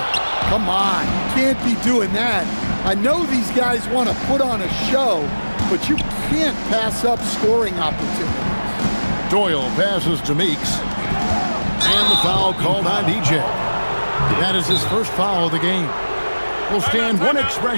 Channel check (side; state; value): both; inverted; correlation -1.00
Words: Come on, you can't be doing that. I know these guys want to put on a show, but you can't pass up scoring opportunities. Doyle passes to Meeks. And the foul called on DJ. That is his first foul of the game. Well, Stan, one